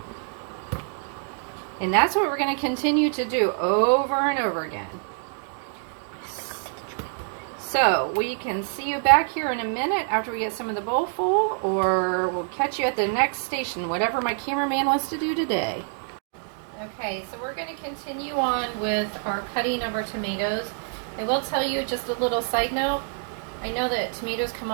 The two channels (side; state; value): left; silent; 61 dB below the other